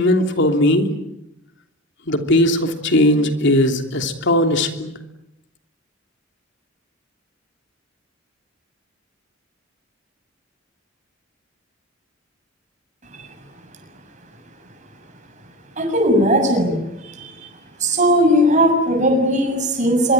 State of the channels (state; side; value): normal; both; correlation 0.25